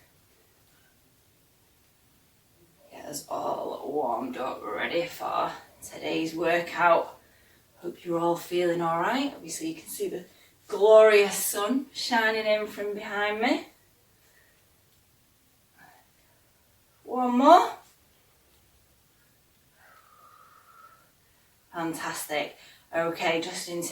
Get us all warmed up, ready for today's workout. Hope you're all feeling all right. Obviously you can see the glorious sun shining in from behind me. One more. Fantastic. Okay, just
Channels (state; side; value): identical; both; correlation 1.00